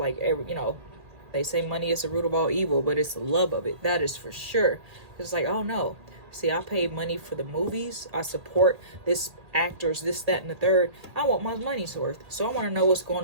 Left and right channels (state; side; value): late; left; 1.8 ms